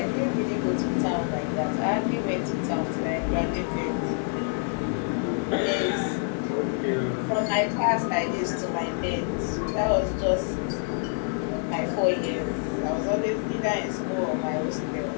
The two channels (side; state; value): right; silent; 56 dB below the other